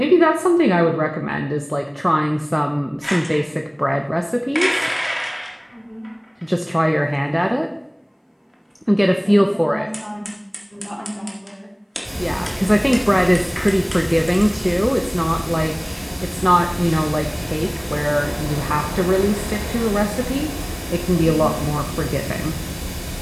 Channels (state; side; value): identical; both; correlation 1.00